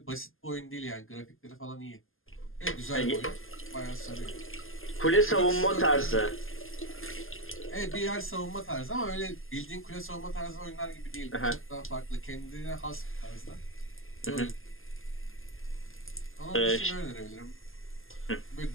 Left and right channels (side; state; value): right; late; 0.59 ms